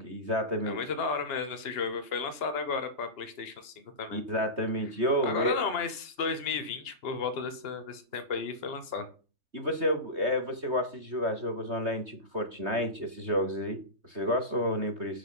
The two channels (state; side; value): late; left; 2.9 ms